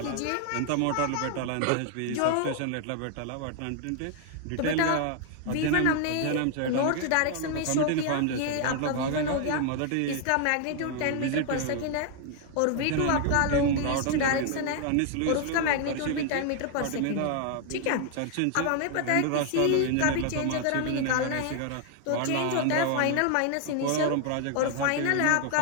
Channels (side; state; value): both; different; correlation 0.00